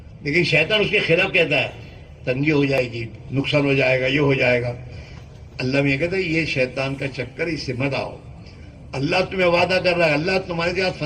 لیکن شیطان اس کے خلاف کہتا ہے تنگی ہو جائے گی، نقصان ہو جائے گا، یہ ہو جائے گا۔ اللہ میں یہ کہتا ہے یہ شیطان کا چکر، اس سے مت آؤ، اللہ تمہیں وعدہ کر رہا ہے، اللہ تمہارے ساتھ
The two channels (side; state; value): both; identical; correlation 1.00